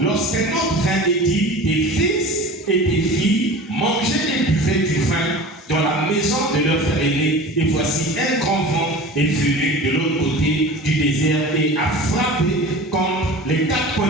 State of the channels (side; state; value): both; normal; correlation 0.37